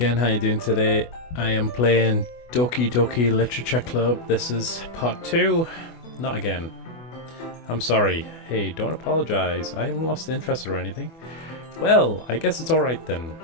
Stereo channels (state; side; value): late; right; 24 ms